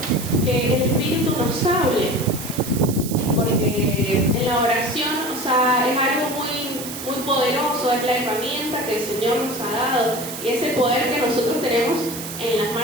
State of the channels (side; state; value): right; noise; hiss, 9 dB below the sound